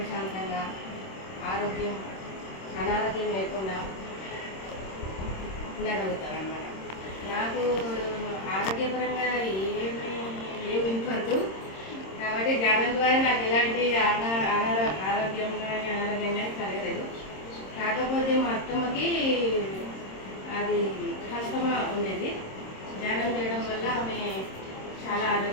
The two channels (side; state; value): right; late; 26 ms